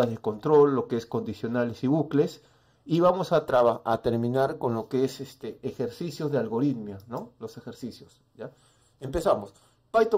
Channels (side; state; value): both; identical; correlation 1.00